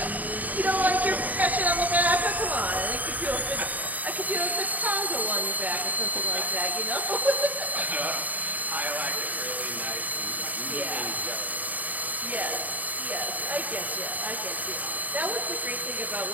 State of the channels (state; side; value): late; left; 0.078 ms